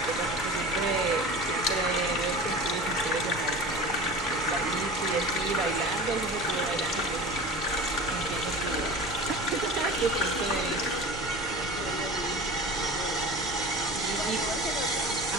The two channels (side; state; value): both; normal; correlation 0.35